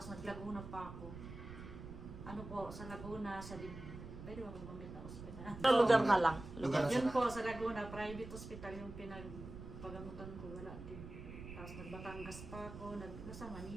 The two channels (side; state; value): right; noise; rumble, 11 dB below the sound